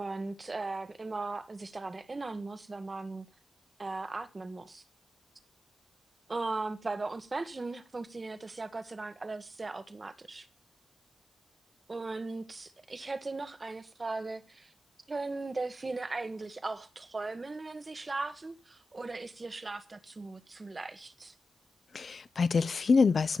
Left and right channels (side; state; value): both; normal; correlation 0.91